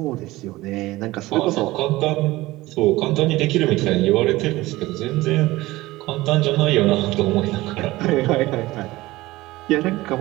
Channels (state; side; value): quieter; left; 18.8 dB